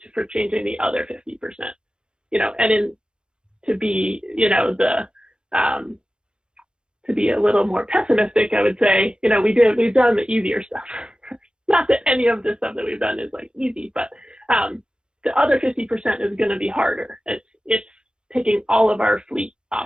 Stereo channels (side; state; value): left; late; 0.049 ms